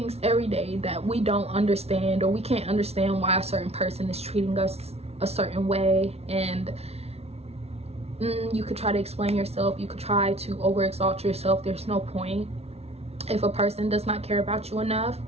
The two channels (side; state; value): left; late; 0.30 ms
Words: every day that we don't understand, or we can't understand why a certain person is treating us a certain way. And you could try to explain yourself, you could try to overexalt yourself. There's no point. If a person does not care about you enough,